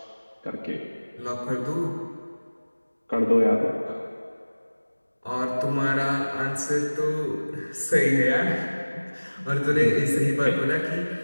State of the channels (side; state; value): both; inverted; correlation -1.00